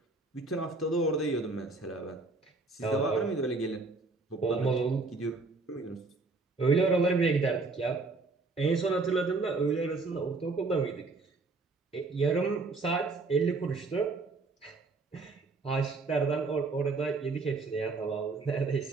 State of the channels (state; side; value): quieter; left; 3.7 dB